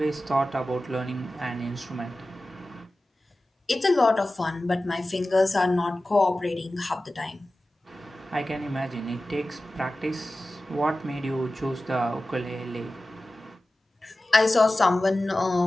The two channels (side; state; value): both; normal; correlation 0.95